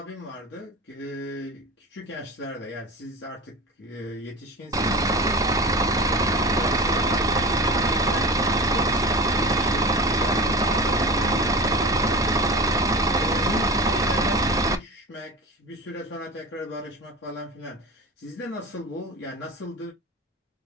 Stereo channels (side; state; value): both; normal; correlation 0.32